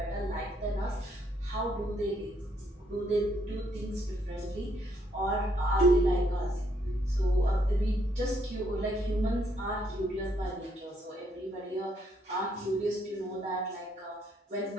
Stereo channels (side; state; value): both; normal; correlation 0.72